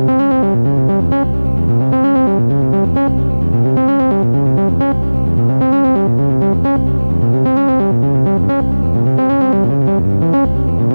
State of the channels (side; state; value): both; inverted; correlation -1.00